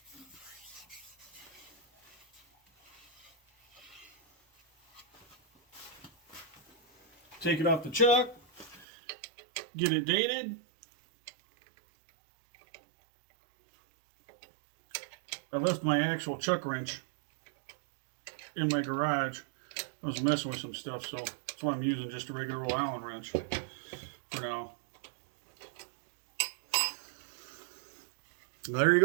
Take it off the chuck, get it dated. I left my actual chuck wrench in my garage. I was messing with some stuff, so that's why I'm using just a regular old Allen wrench for now. There you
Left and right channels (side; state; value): left; drops out; at 8.8 s